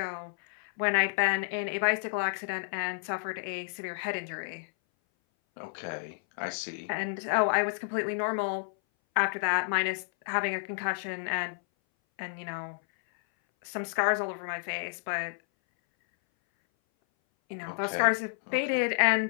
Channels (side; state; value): right; silent; 58 dB below the other